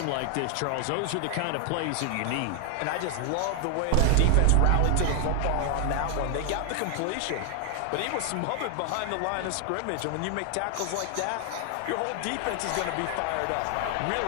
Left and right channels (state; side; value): different; both; correlation 0.00